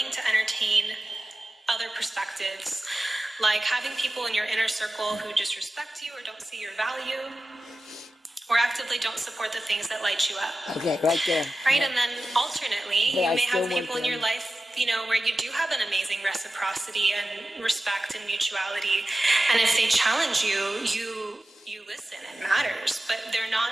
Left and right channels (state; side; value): normal; both; correlation 0.94